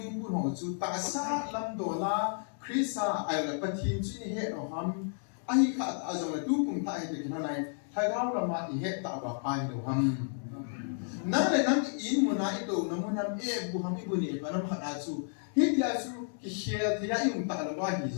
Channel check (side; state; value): right; silent; digital silence